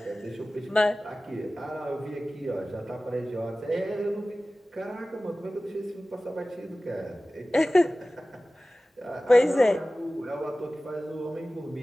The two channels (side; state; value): both; normal; correlation 0.97